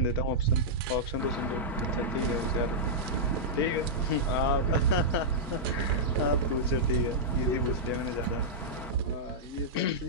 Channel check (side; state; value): both; normal; correlation -0.09